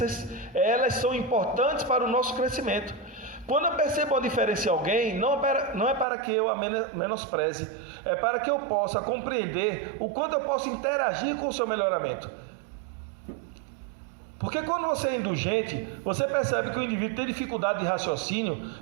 elas são importantes para o nosso crescimento. Quando eu percebo a diferença em alguém, não é para que eu a menospreze, é para que eu possa compreender o quanto eu posso interagir com o seu melhoramento. Porque quando você é indulgente, você percebe que o indivíduo tem dificuldade de raciocínio,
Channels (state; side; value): drops out; left; at 6.1 s